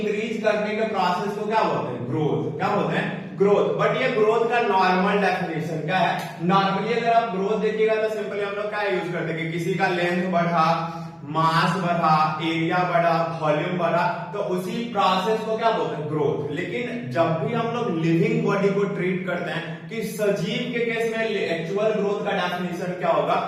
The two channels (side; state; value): both; identical; correlation 1.00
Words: करने के प्रोसेस को क्या बोलते हैं? ग्रोथ। क्या बोलते हैं? ग्रोथ। बट ये ग्रोथ का नॉर्मल डेफिनेशन क्या है? नॉर्मली अगर आप ग्रोथ देखिएगा तो सिंपली हम लोग क्या यूज करते हैं कि किसी का लेंथ बढ़ा, मास बढ़ा, एरिया बढ़ा, वॉल्यूम बढ़ा, तो उसी प्रोसेस को क्या बोलते हैं? ग्रोथ। लेकिन जब भी हम लोग लिविंग बॉडी को ट्रीट करते हैं कि सजीव के केस में एक्चुअल ग्रोथ का डेफिनेशन क्या होगा,